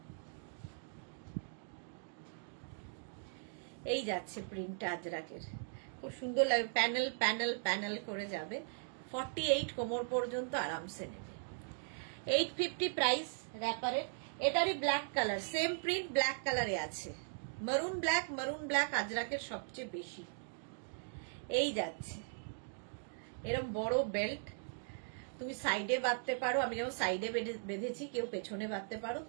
এই যাচ্ছে প্রিন্টটা আজরাকের, খুব সুন্দর লাগবে, প্যানেল প্যানেল প্যানেল করে যাবে, 48 কোমর পর্যন্ত আরামসে নেবে। 850 প্রাইস র্যাপারের। এটারই black colour, same print black কালারে আছে, মারুন ব্ল্যাক আজরাকের সবচেয়ে বেশি। এই যাচ্ছে এরকম বড় বেল্ট, তুমি সাইডে বাঁধতে পারো, আমি যেমন সাইডে বেঁধেছি, কেউ পেছনে বাঁধতে পারো,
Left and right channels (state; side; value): silent; left; digital silence